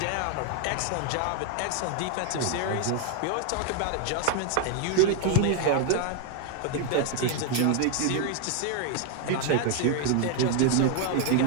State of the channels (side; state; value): both; different; correlation 0.01